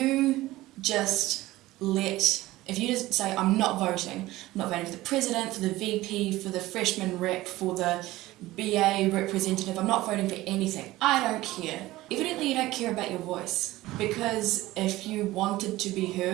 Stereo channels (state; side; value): quieter; left; 17.5 dB